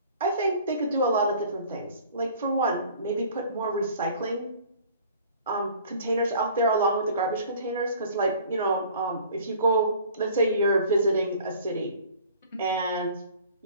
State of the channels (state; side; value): inverted; both; correlation -0.48